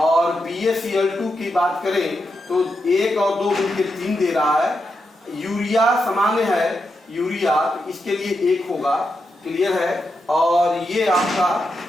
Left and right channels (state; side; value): normal; both; correlation 0.85